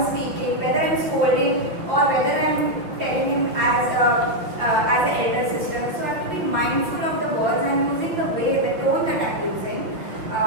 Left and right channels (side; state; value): left; late; 5.8 ms